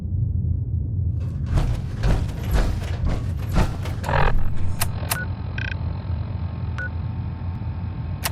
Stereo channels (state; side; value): identical; both; correlation 1.00